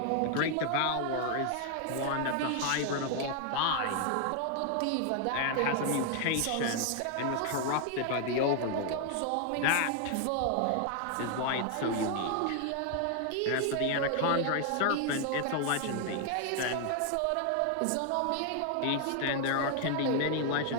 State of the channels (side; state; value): both; different; correlation 0.00